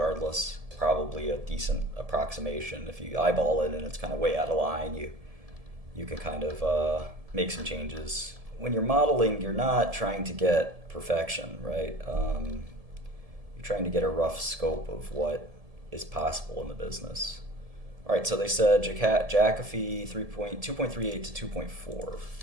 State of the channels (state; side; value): late; left; 1.7 ms